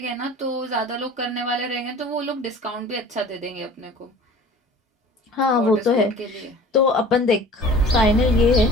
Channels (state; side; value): normal; both; correlation 0.44